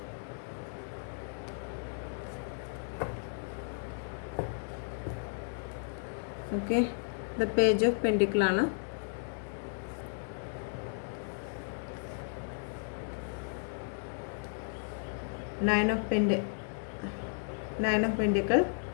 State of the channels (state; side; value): silent; right; digital silence